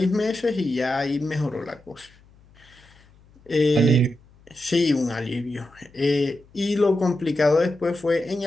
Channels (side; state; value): left; noise; hum, 28 dB below the sound